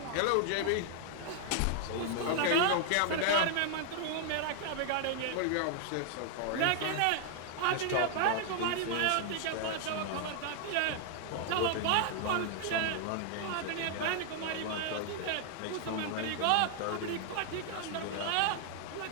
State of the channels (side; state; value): both; different; correlation 0.00